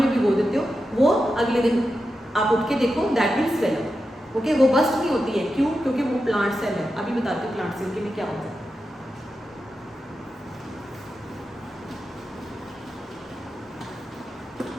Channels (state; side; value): normal; both; correlation 0.90